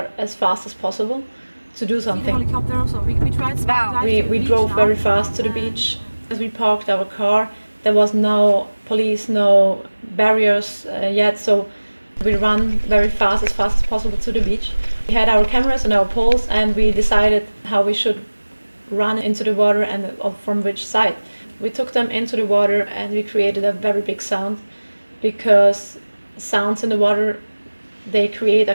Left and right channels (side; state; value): both; inverted; correlation -1.00